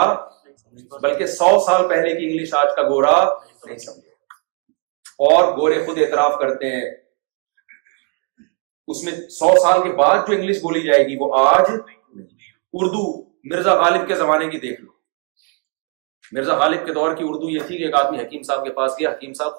بلکہ 100 سال پہلے کی انگلش آج کا گورا نہیں سمجھے. اور گورے خود اعتراف کرتے ہیں اس میں 100 سال کے بعد جو انگلش بولی جائے گی وہ آج. اردو مرزا غالب کے زمانے کی دیکھ لو. مرزا غالب کے دور کی اردو یہ تھی کہ ایک آدمی حکیم صاحب کے پاس گیا، حکیم صاحب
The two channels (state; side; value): quieter; left; 35.3 dB